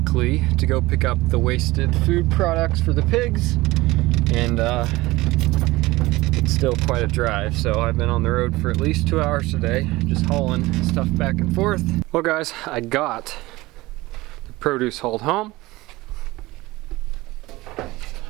to go pick up the wasted food products for the pigs, and it's still quite a drive, so I've been on the road for at least 2 hours today, just hauling stuff back and forth. Well guys, I got the produce hauled home.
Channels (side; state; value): left; quieter; 19.8 dB